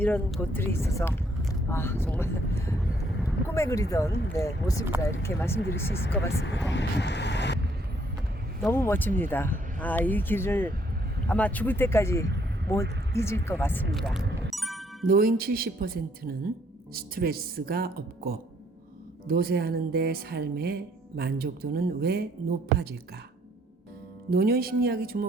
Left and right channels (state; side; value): normal; both; correlation 0.67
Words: 곳들이 있어서 정말 꿈에 그리던 모습이다 이렇게 말씀드릴 수 있을 것 같습니다. 너무 멋집니다. 이 길을 아마 죽을 때까지 못 잊을 것 같습니다. 노인 70%는 스트레스가 없고 노쇠하는데 삶의 만족도는 왜 높아질까? 노년 심리학이